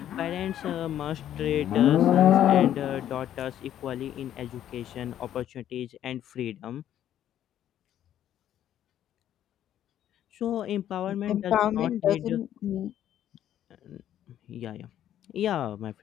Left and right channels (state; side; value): quieter; right; 11.2 dB